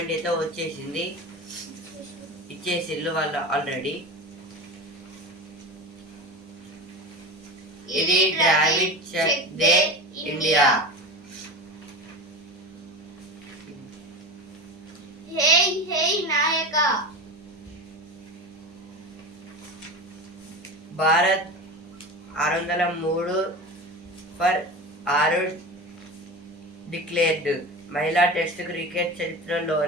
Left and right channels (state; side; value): normal; both; correlation 0.28